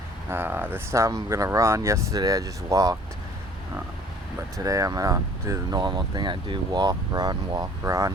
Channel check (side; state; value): both; normal; correlation 0.52